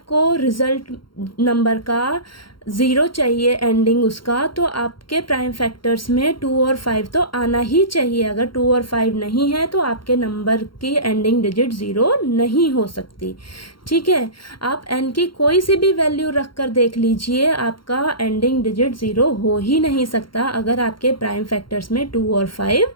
रिजल्ट नंबर का ज़ीरो चाहिए एंडिंग उसका, तो आपके प्राइम फैक्टर्स में 2 और 5 तो आना ही चाहिए। अगर 2 और 5 नहीं है तो आपके नंबर की एंडिंग डिजिट ज़ीरो नहीं हो सकती। ठीक है, आप n की कोई सी भी वैल्यू रख कर देख लीजिए, आपका एंडिंग डिजिट ज़ीरो हो ही नहीं सकता अगर आपके प्राइम फैक्टर्स में 2 और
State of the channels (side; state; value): right; late; 0.73 ms